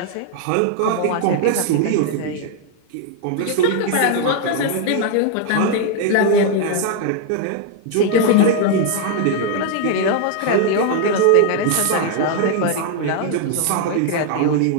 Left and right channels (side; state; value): both; different; correlation 0.00